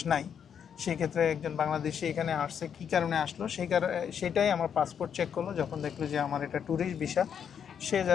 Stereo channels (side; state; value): right; quieter; 7.9 dB